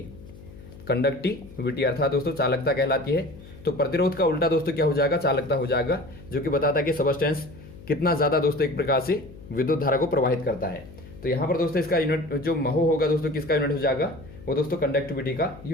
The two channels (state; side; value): noise; left; hum, 18 dB below the sound